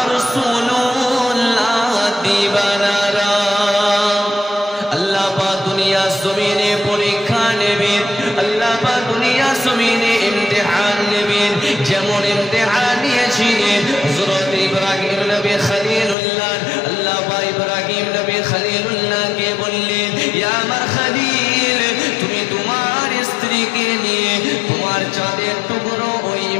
রাসূলুল্লাহ দিবানারা আল্লাহ পাক দুনিয়া জমিনে পরীক্ষা নেবেন আল্লাহ পাক দুনিয়া জমিনে ইমতিহান নেবেন যেমন ইমতিহান নিয়েছিলেন হযরত ইব্রাহিম নবী খলিলুল্লাহ আল্লাহ পাক ইব্রাহিম নবী খলিলুল্লাহকে বললেন ইয়া আমার খলিল তুমি তোমার স্ত্রীকে নিয়ে তোমার চাঁদের টুকরো ওই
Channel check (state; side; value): drops out; right; at 16.2 s